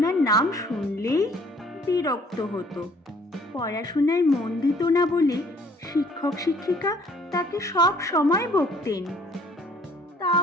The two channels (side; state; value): both; normal; correlation 0.58